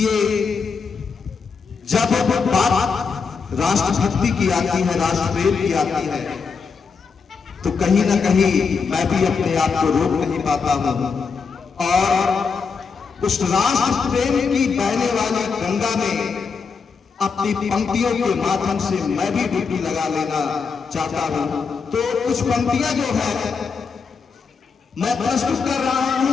जब बात राष्ट्रभक्ति की आती है, राष्ट्रप्रेम की आती है, तो कहीं ना कहीं मैं भी अपने आप को रोक नहीं पाता हूं और उस राष्ट्र प्रेम की बहने वाली गंगा में अपनी पंक्तियों के माध्यम से मैं भी डुबकी लगा लेना चाहता हूं। तो कुछ पंक्तियां जो है मैं प्रस्तुत कर रहा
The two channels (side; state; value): right; quieter; 5.4 dB